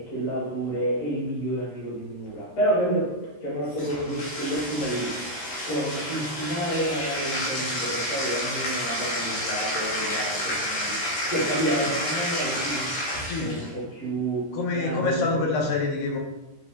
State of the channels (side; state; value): right; late; 13 ms